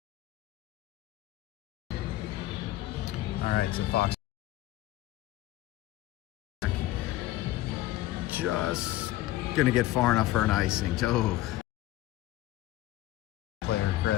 All right, so Fox just gonna get far enough for an icing. Oh. Player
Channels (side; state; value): right; quieter; 15.7 dB